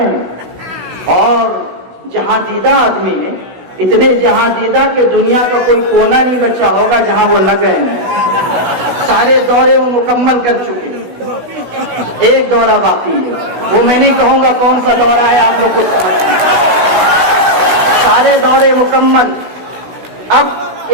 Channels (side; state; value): left; late; 16 ms